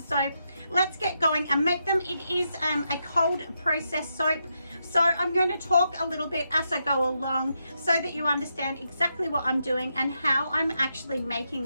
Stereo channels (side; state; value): both; inverted; correlation -0.83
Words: let's get going and make them. It is a cold process soap, so I'm going to talk a little bit as I go along so that you understand exactly what I'm doing and how I'm actually